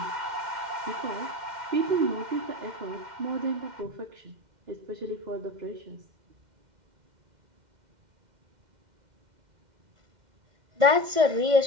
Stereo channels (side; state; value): left; late; 2.1 ms